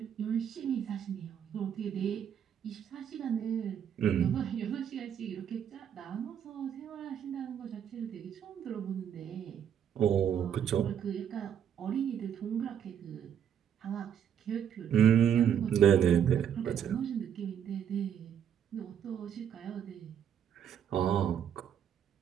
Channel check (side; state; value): left; quieter; 8.8 dB